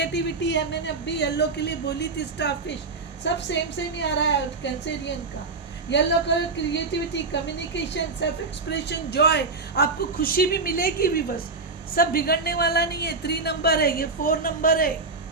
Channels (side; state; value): left; quieter; 3.9 dB